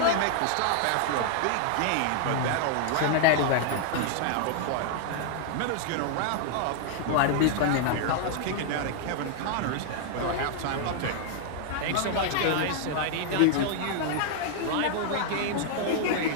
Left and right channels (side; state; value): both; different; correlation -0.01